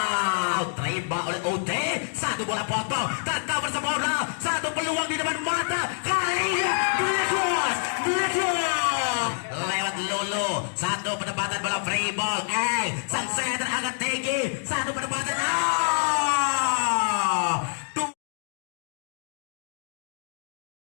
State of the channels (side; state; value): right; silent; digital silence